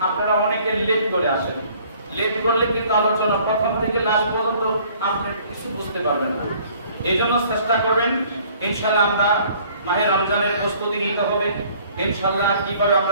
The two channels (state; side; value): inverted; both; correlation -0.56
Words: আপনারা অনেকে লেট করে আসেন। লেট করলে কিন্তু আলোচনা প্রথম থেকে লাস্ট পর্যন্ত আপনি কিছু বুঝতে পারবেন না। এইজন্য চেষ্টা করবেন ইনশাআল্লাহ। আমরা মাহে রমজানের প্রস্তুতি নিতে হবে ইনশাআল্লাহ। কিভাবে